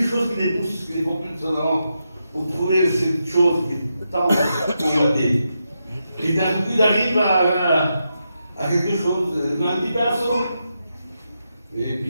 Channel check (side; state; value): both; inverted; correlation -0.85